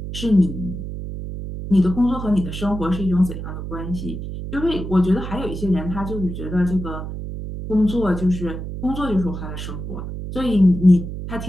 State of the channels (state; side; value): noise; right; hum, 7 dB below the sound